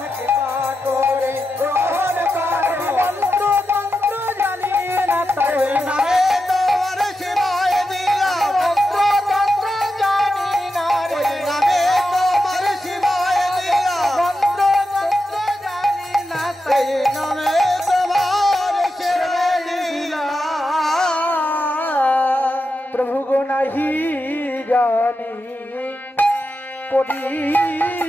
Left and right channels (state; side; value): normal; both; correlation 0.88